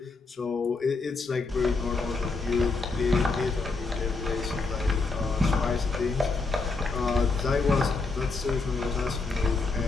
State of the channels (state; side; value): quieter; right; 3.9 dB